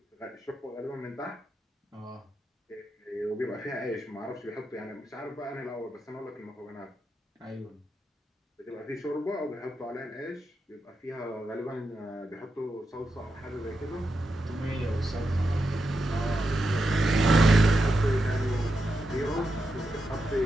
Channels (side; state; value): both; normal; correlation 0.86